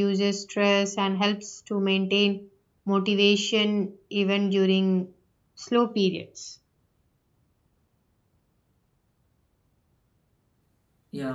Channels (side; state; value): both; identical; correlation 1.00